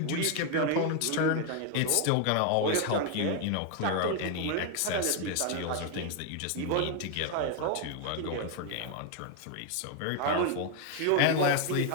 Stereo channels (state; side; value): different; both; correlation 0.01